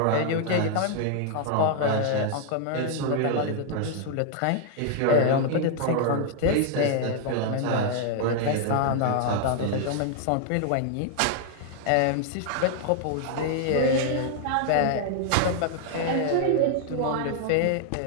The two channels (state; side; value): different; both; correlation 0.00